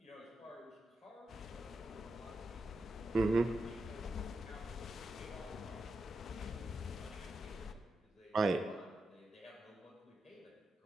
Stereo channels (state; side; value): normal; both; correlation 0.88